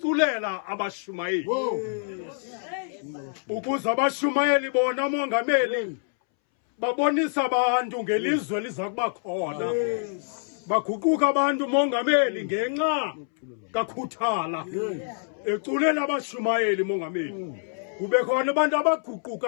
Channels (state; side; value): silent; right; 61 dB below the other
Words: abashumayeli. Ukuze abashumayeli bona mongameli babonisa abantu ngelizwe liza kuba khona. Baguquka abantu mongameli ngenxa kaKhuthala. Eculela abashumayeli mongameli. Kube khona abantu